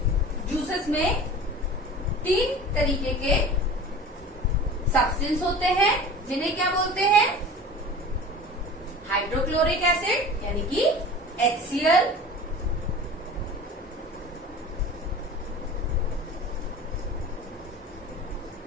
जूसेस में 3 तरीके के सब्सटेंस होते हैं जिन्हें क्या बोलते हैं, हाइड्रोक्लोरिक एसिड यानी कि HCl,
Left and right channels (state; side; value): normal; both; correlation 0.38